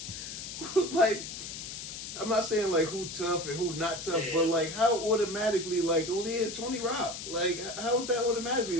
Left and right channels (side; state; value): left; noise; hiss, 8 dB below the sound